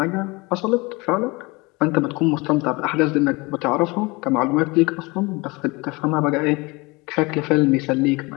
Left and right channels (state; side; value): quieter; right; 25.1 dB